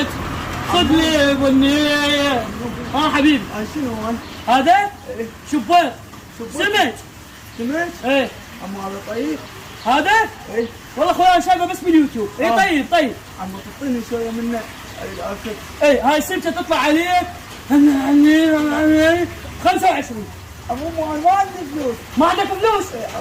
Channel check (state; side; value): identical; both; correlation 1.00